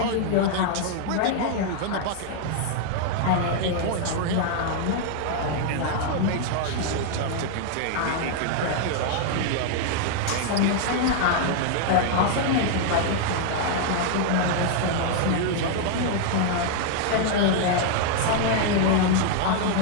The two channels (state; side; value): different; both; correlation 0.00